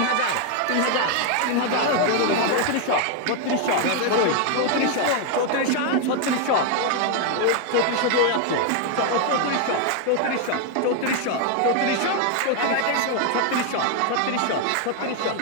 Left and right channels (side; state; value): both; different; correlation 0.01